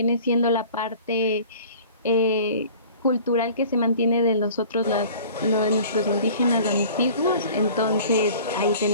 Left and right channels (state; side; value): inverted; both; correlation -0.46